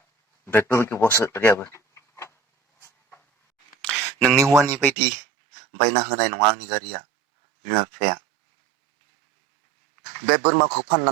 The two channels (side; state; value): left; drops out; at 5.0 s